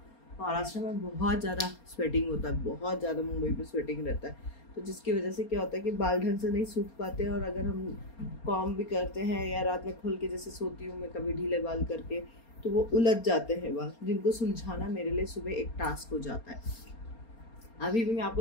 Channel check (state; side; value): late; right; 4.3 ms